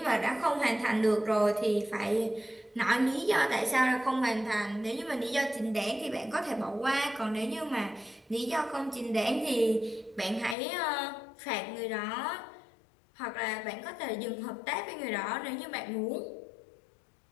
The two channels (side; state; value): right; drops out; at 10.6 s